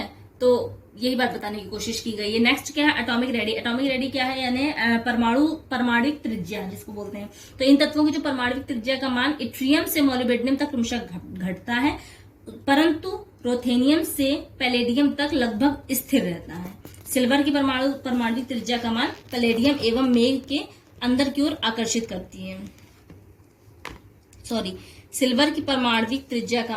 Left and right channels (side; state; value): both; identical; correlation 1.00